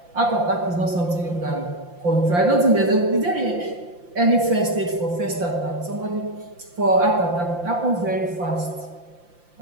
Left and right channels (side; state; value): left; late; 5.7 ms